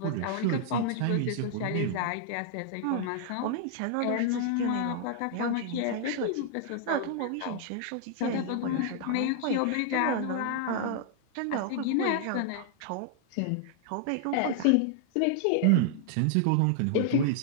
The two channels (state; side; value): different; both; correlation -0.01